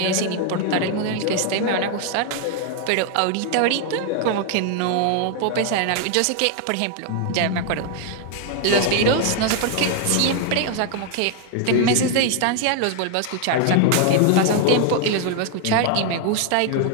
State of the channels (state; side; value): different; both; correlation 0.00